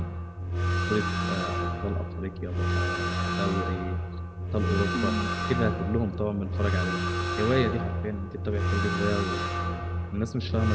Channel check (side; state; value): both; identical; correlation 1.00